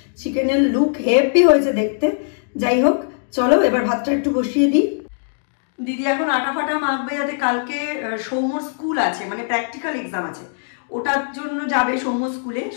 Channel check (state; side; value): silent; right; digital silence